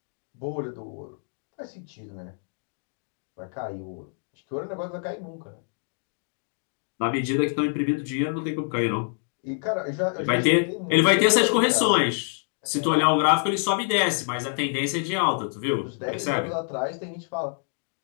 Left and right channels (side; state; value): right; silent; 61 dB below the other